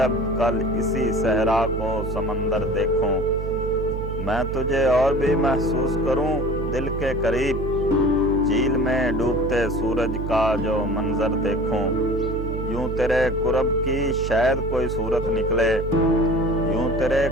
کل اسی صحرا کو سمندر دیکھوں، میں تجھے اور بھی محسوس کروں دل کے قریب، جھیل میں ڈوبتے سورج کا جو منظر دیکھوں، یوں تیرے قرب کی شاید کوئی صورت نکلے، یوں تیرے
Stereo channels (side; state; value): right; noise; hum, 5 dB below the sound